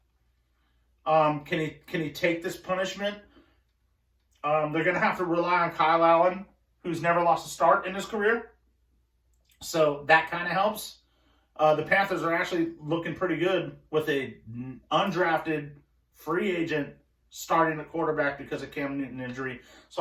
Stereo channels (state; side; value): identical; both; correlation 1.00